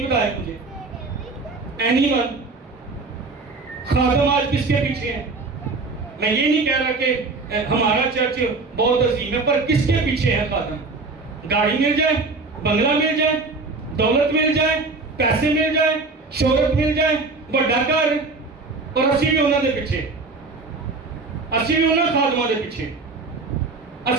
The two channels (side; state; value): left; quieter; 3.7 dB